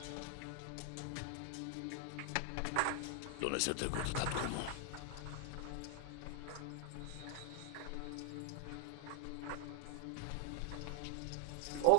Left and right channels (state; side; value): different; both; correlation 0.00